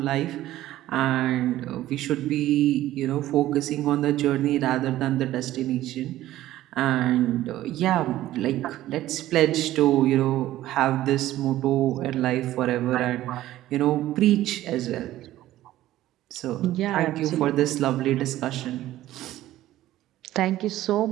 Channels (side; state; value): left; quieter; 14.6 dB